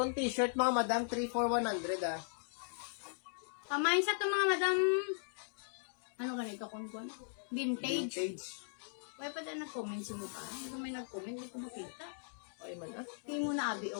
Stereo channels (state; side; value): silent; right; digital silence